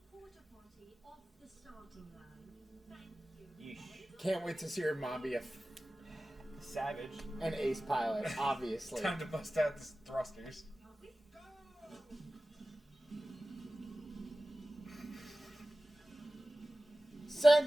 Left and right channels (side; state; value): both; normal; correlation 0.96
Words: Yeesh. Can't wait to see her mom be a Savage. an ace pilot, obviously. Time to bust out the thrusters. Send